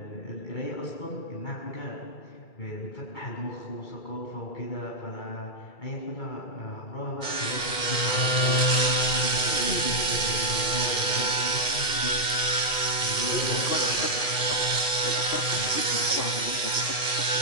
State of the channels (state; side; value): late; right; 2.3 ms